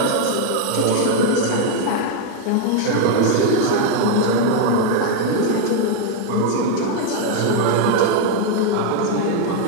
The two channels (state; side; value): different; both; correlation 0.01